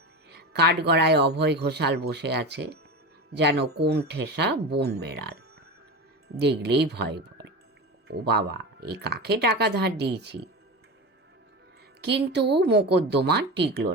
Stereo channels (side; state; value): both; normal; correlation 0.25